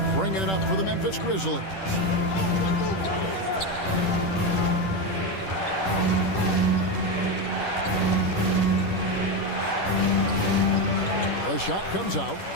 bringing it up for the Memphis Grizzlies. The shot comes out.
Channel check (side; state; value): right; late; 10 ms